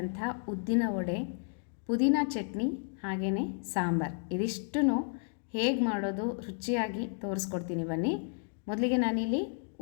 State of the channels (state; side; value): silent; right; 56 dB below the other